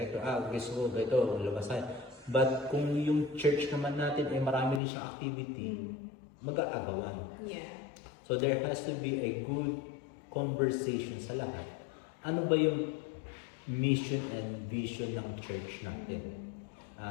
Gusto ko ito, labas tayo. But kung yung church naman natin ay marami rin siyang activity, mag-aagawan. Yeah. So there has to be a good conversation sa lahat. Ano ba yung mission and vision ng church natin?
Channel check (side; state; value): right; drops out; at 4.8 s